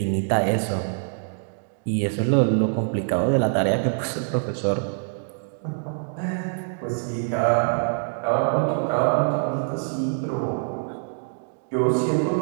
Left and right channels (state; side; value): silent; left; digital silence